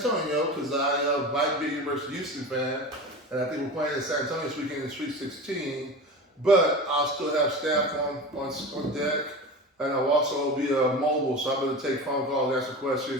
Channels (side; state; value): both; normal; correlation 0.30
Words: because I might be a University of Houston fan, and I think we're playing in San Antonio this weekend in Sweet 16. But I'll still have staff on deck, and I'll also be mobile, so I'm going to take phone calls, answer